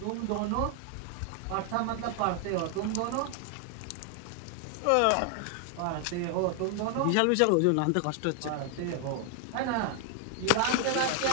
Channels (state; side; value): different; both; correlation 0.00